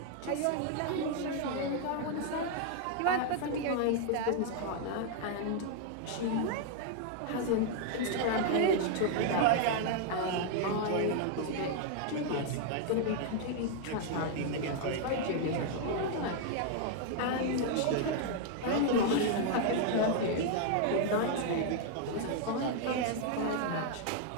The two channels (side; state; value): both; different; correlation 0.00